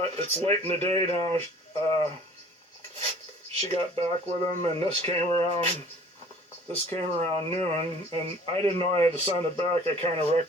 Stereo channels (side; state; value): both; normal; correlation 0.50